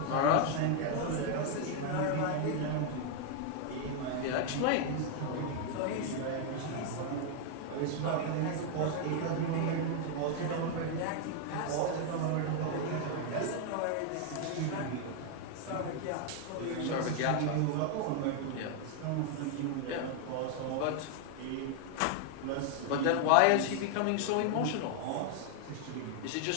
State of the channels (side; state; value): both; different; correlation 0.00